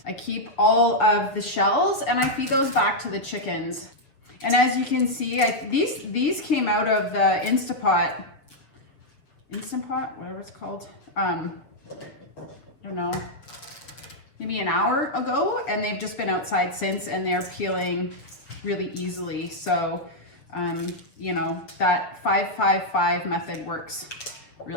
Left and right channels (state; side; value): late; right; 7.2 ms